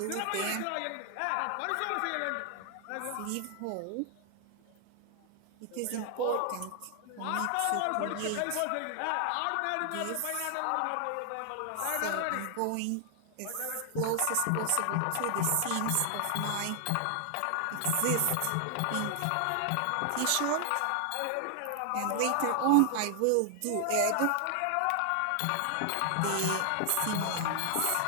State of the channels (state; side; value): different; both; correlation 0.00